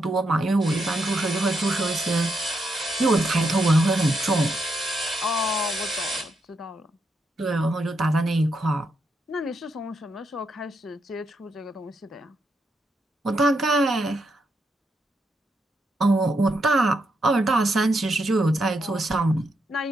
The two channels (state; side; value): normal; both; correlation 0.81